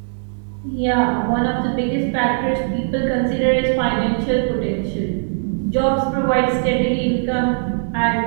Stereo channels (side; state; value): left; silent; digital silence